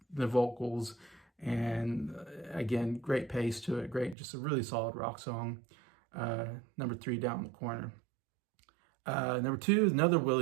vocals, and again, great pace to it. Great, just a really solid rock song. Number 3, Down the Corner. Number 2 is another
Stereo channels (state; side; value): drops out; left; at 4.2 s